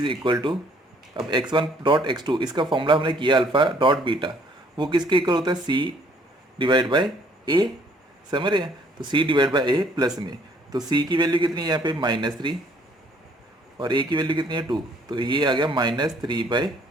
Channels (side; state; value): both; normal; correlation 0.62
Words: equal to, अब x1 डॉट x2 इसका फॉर्मूला हमने किया अल्फा डॉट बीटा, वो किसके इक्वल होता है, c डिवाइड बाय a, समझ रहे हैं। तो c divide by a plus में, तो c की वैल्यू कितनी है यहाँ पे -3 और a की वैल्यू कितनी है 2, तो ये आ गया